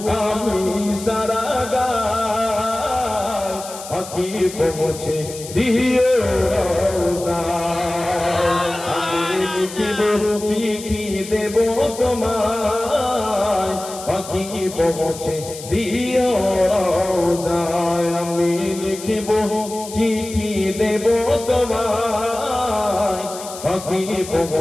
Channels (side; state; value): left; noise; hiss, 13 dB below the sound